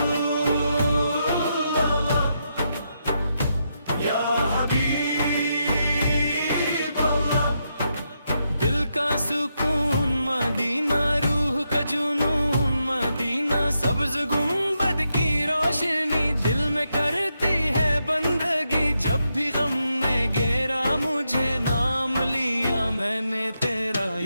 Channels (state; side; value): inverted; both; correlation -0.82